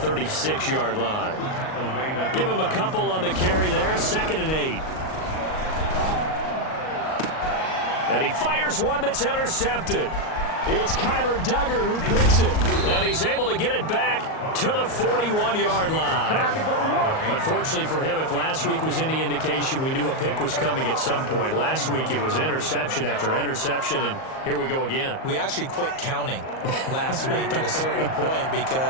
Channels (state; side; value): late; right; 38 ms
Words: line. Give him a couple on the carry there. 2nd and 8. And he fires one that's intercepted. It's Kyler Duggar who picks it. And he's able to get it back to the 41-yard line. Unfortunately for him, if last week was any indication, we knew a pick was coming at some point. Last week it was interception after interception, and here we go again. We actually quit counting last week at a certain point